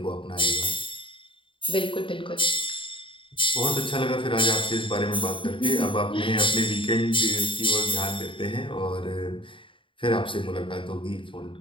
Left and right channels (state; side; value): late; right; 0.25 ms